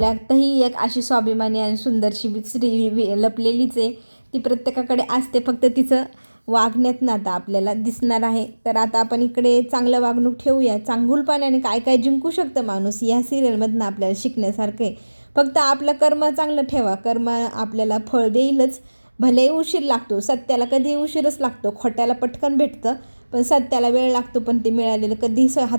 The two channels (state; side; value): inverted; both; correlation -1.00